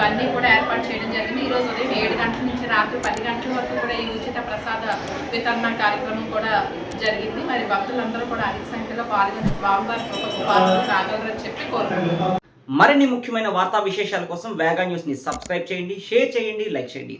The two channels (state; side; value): identical; both; correlation 1.00